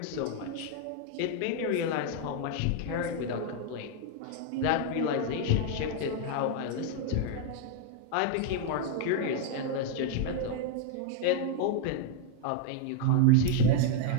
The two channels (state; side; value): different; both; correlation 0.00